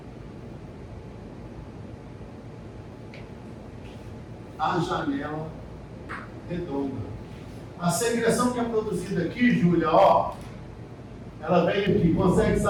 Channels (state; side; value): identical; both; correlation 1.00